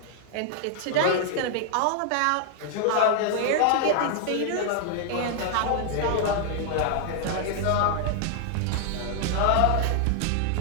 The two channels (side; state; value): both; different; correlation 0.00